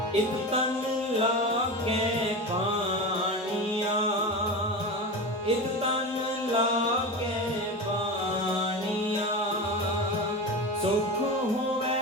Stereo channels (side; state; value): both; normal; correlation 0.24